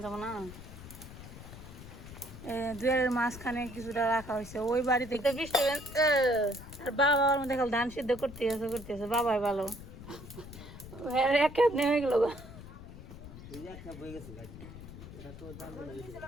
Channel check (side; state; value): left; noise; rumble, 14 dB below the sound